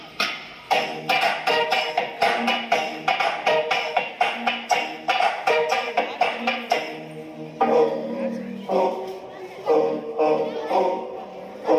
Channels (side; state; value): both; identical; correlation 1.00